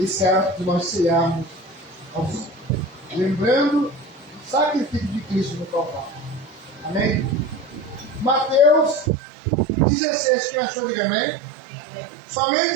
ato de nós cearmos ao Senhor, lembrando o sacrifício de Cristo no Calvário. Amém? Mateus 16, quem achou, diga amém?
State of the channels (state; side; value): drops out; left; at 9.1 s